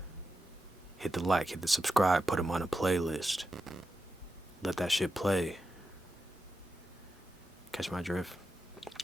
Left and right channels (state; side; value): normal; both; correlation 0.89